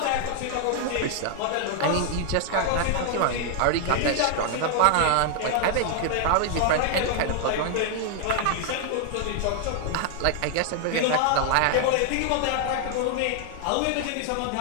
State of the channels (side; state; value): both; different; correlation 0.00